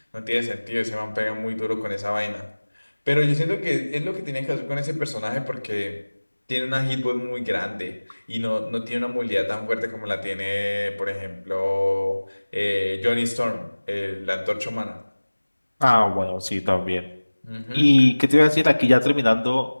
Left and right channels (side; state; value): both; inverted; correlation -1.00